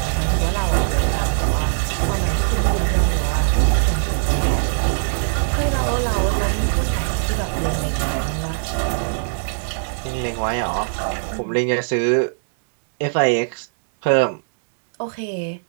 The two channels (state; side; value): silent; left; 65 dB below the other